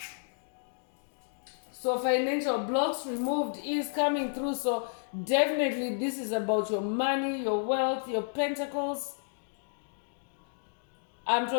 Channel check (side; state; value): right; silent; digital silence